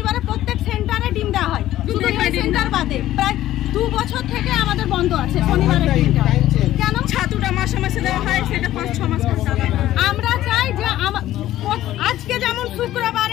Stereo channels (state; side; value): quieter; right; 13.9 dB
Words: প্রত্যেক সেন্টারে ডিম দেওয়া হয়, শুধু এই সেন্টার বাদে প্রায় 2 বছর থেকে আমাদের বন্ধ আছে শনিবারে ডিমটা। কেন? ছাতুটা মাসে মাসে দেওয়া হয়, সেটা 5-6 মাস আমরা চাই যে আজকে যেমন